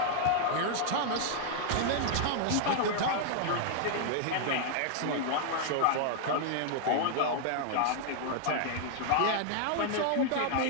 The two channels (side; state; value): both; different; correlation -0.01